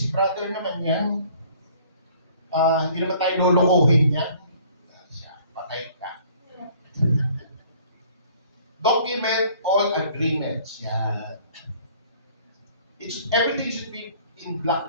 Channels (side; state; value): both; inverted; correlation -0.55